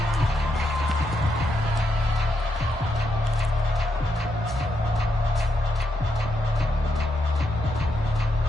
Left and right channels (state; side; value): normal; both; correlation 0.81